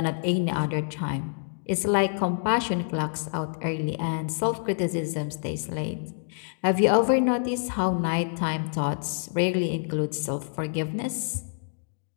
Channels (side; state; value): right; silent; digital silence